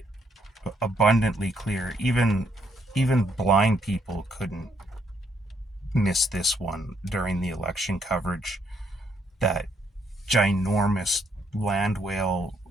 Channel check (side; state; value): both; normal; correlation 0.72